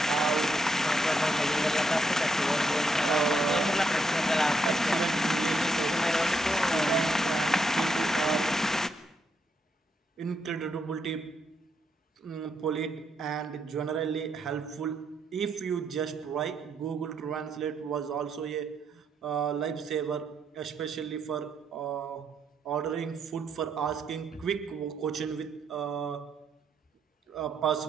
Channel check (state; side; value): normal; both; correlation 0.78